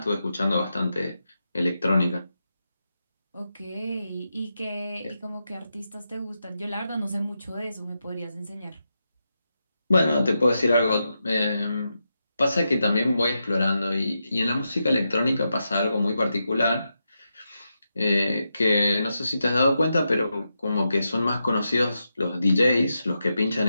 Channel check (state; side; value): inverted; both; correlation -0.87